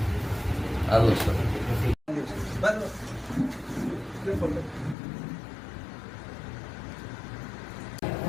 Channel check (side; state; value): right; drops out; at 5.0 s